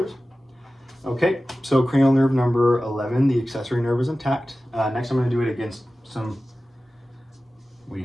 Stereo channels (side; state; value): both; normal; correlation 0.95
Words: Okay, so cranial nerve number 11, the accessory nerve is intact. Next, I'm going to do it against some